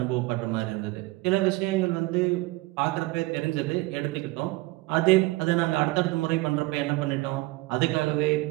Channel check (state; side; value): quieter; left; 20.8 dB